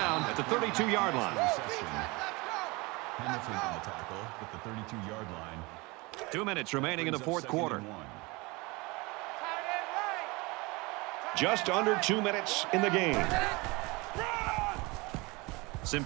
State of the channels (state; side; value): quieter; left; 25.0 dB